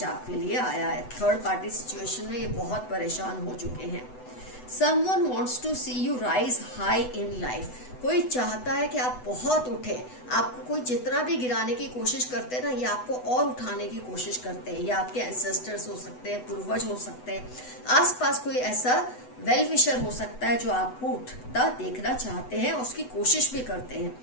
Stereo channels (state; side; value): late; right; 8.0 ms